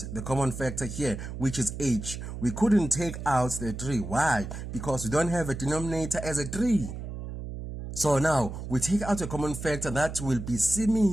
The common factor here, which is h. We couldn't take out the 3. Why? Because we don't have a denominator as a 3. So now we take out a common factor that will be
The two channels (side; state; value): right; noise; hum, 8 dB below the sound